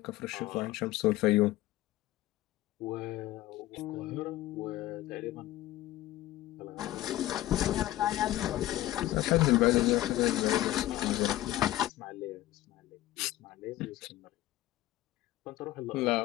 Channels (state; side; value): quieter; right; 15.4 dB